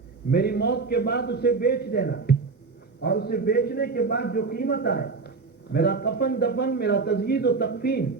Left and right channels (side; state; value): left; quieter; 4.4 dB